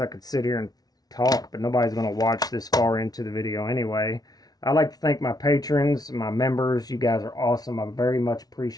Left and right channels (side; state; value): right; late; 0.19 ms